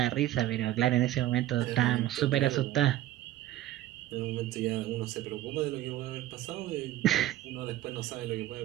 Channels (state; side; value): quieter; left; 14.1 dB